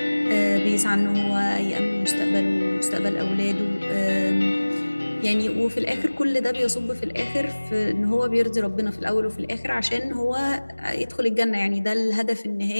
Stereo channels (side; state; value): both; inverted; correlation -1.00